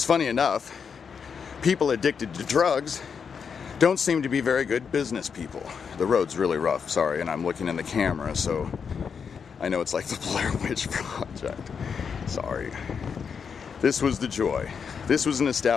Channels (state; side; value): quieter; right; 6.4 dB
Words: funny enough, people addicted to drugs don't seem to be very good business people. The road's really rough, sorry, and I'm looking in the camera, so I know it's like the Blair Witch Project. Sorry. This was the Joy. This was an